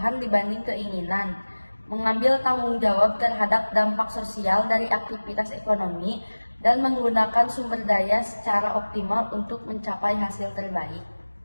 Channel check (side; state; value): both; inverted; correlation -1.00